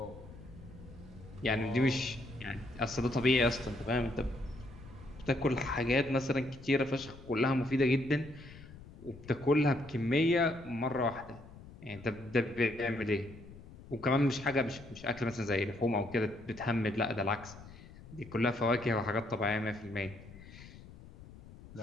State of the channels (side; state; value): left; noise; rumble, 18 dB below the sound